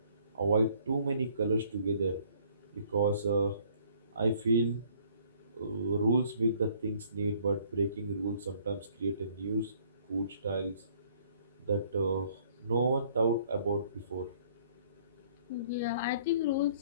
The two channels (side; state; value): both; inverted; correlation -0.60